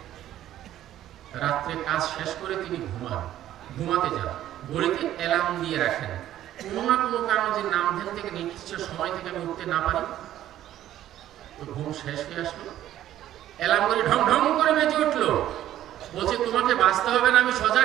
রাত্রে কাজ শেষ করে তিনি ঘুমাতে যান। ঘড়িতে অ্যালার্ম দিয়ে রাখেন, কোনো না কোনো কারণে যে নাম ধ্যান থেকে নির্দিষ্ট সময় থেকে আমি উঠতে না পারি। তো ঘুম শেষ হয়ে আসলো, অ্যালার্ম করে ঢং ঢং করে বেজে উঠলো। বলছে, তোমাকে বাঁচতে হবে না, আমি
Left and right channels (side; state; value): left; quieter; 12.6 dB